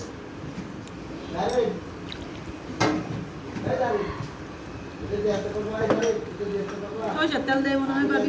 ওই তেল দেয় মনে হয় ভাবি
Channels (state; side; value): identical; both; correlation 1.00